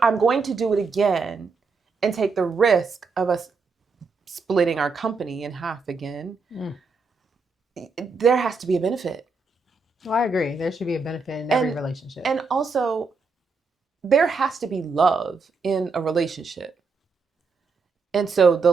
I'm going to do it again and take the risk of us splitting our company in half again, there has to be a benefit. Well, I agree. There should be a benefit in every relationship. And also, there has to be love in a relationship. And so the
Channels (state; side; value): quieter; left; 4.4 dB